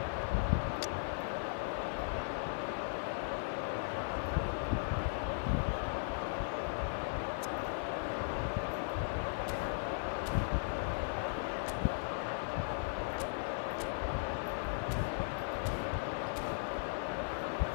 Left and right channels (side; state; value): right; silent; 53 dB below the other